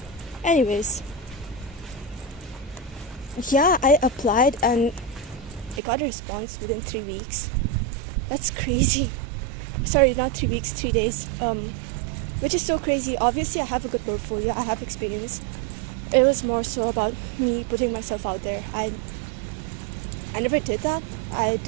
Anyways, yeah, I applied and I got a response within 3 weeks. That's crazy. Sorry, not 3 weeks, 3 days. Which is so crazy. Obviously, I have a good portfolio, I have experience. It was more so about me putting myself out there. I never did that. I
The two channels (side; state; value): left; drops out; at 5.8 s